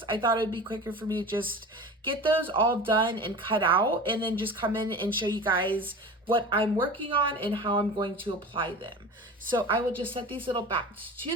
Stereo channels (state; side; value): normal; both; correlation 0.34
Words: I thought it would be quicker for me to just get those all done and cut out and then just come in and show you guys what I'm working on and how I'm going to apply them. So I will just set these little bats to